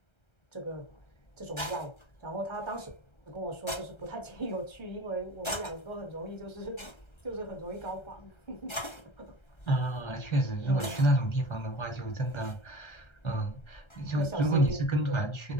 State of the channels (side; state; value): right; late; 1.3 ms